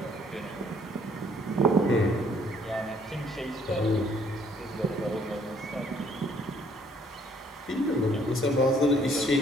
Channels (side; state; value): both; normal; correlation 0.63